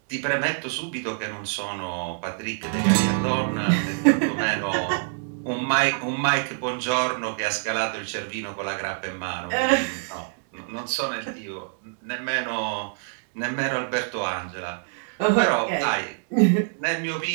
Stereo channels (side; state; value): left; silent; digital silence